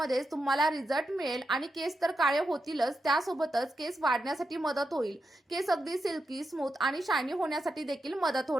तुम्हाला रिझल्ट मिळेल आणि केस तर काळे होतीलच, त्यासोबतच केस वाढण्यासाठी मदत होईल. केस अगदी सिल्की, स्मूथ आणि शायनी होण्यासाठी देखील मदत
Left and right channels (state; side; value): normal; both; correlation 0.86